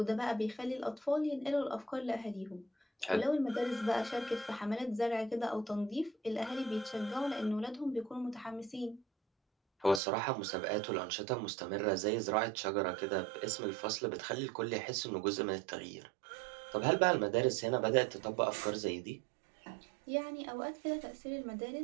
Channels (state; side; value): drops out; left; at 10.0 s